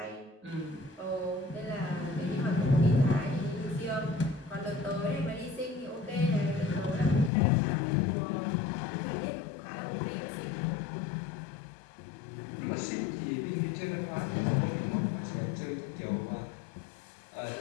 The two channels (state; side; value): drops out; right; at 7.3 s